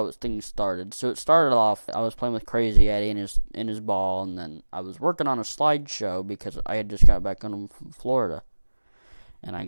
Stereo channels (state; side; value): inverted; both; correlation -1.00